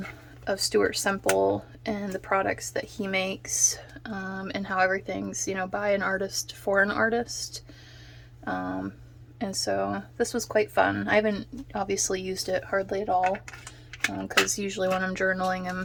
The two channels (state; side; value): identical; both; correlation 1.00